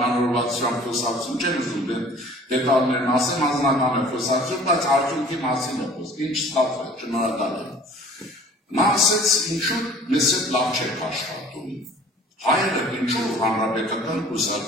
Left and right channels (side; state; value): both; normal; correlation 0.49